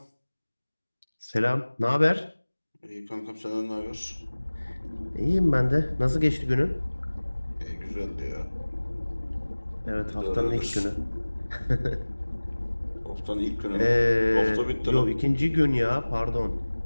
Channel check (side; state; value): both; inverted; correlation -1.00